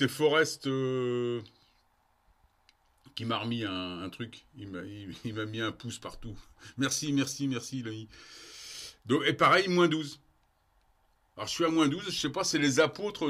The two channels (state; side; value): identical; both; correlation 1.00